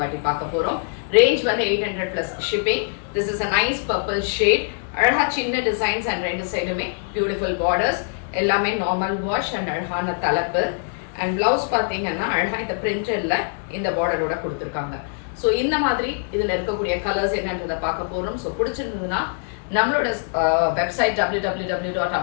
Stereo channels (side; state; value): right; silent; digital silence